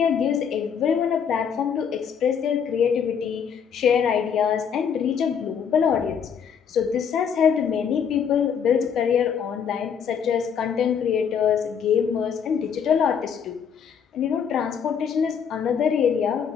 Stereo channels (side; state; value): right; quieter; 7.4 dB